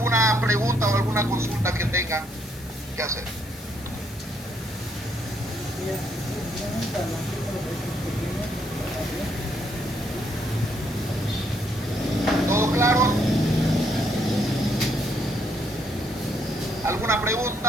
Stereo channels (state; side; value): noise; left; hiss, 21 dB below the sound